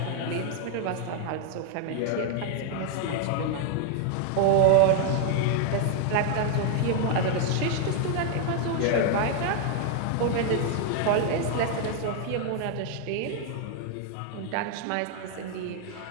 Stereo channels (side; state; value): both; different; correlation 0.00